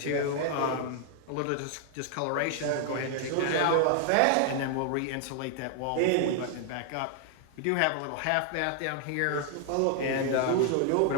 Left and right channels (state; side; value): different; both; correlation 0.00